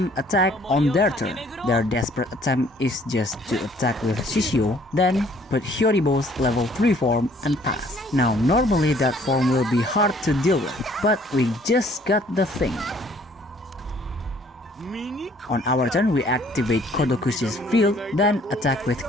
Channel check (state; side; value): normal; both; correlation 0.59